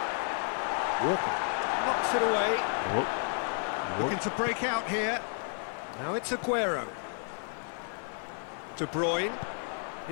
Walker knocks it away. Looking to break out here. Now it's Aguero. De Bruyne.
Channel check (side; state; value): right; silent; 57 dB below the other